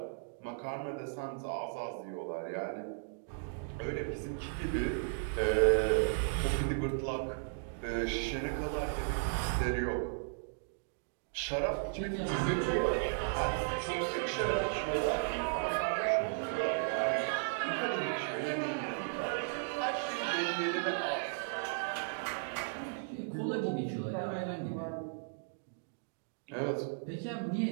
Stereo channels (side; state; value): left; silent; digital silence